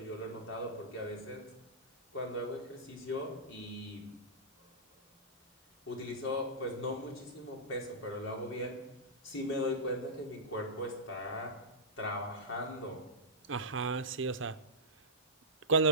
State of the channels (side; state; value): both; normal; correlation -0.15